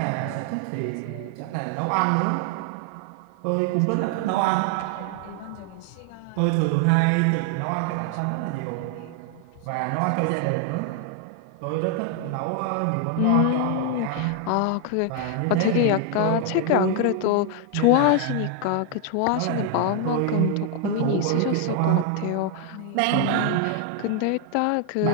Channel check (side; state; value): both; different; correlation 0.00